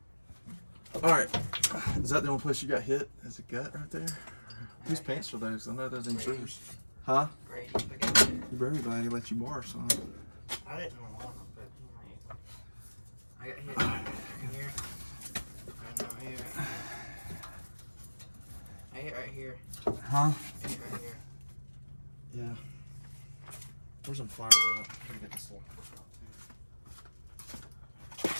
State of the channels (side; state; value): both; inverted; correlation -1.00